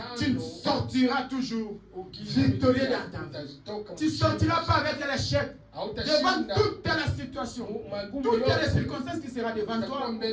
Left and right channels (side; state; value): both; identical; correlation 1.00